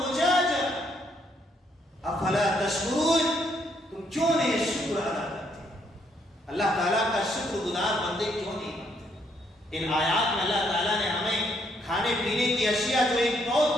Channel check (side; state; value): both; normal; correlation 0.71